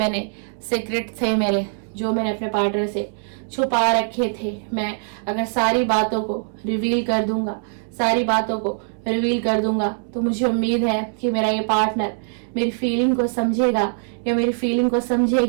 सीक्रेट थे मेरे, जो मैंने अपने पार्टनर से छुपा रखे थे, मैं अगर सारी बातों को रिवील कर दूंगा, सारी बातों को रिवील कर दूंगा, तो मुझे उम्मीद है कि मेरा ये पार्टनर मेरी फीलिंग को समझेगा या मेरी फीलिंग को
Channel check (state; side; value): silent; left; 64 dB below the other